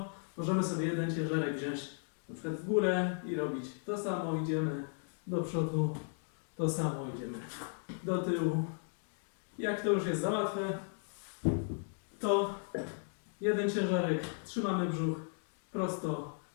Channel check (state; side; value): silent; right; 54 dB below the other